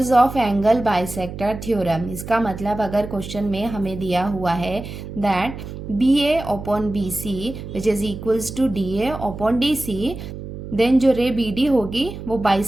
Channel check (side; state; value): right; noise; hum, 10 dB below the sound